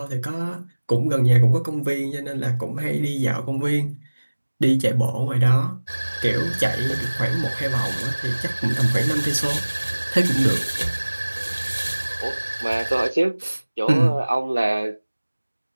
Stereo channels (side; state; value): both; inverted; correlation -1.00